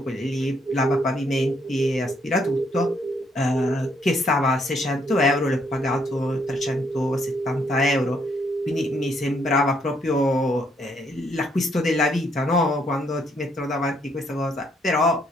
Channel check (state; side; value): normal; both; correlation 0.71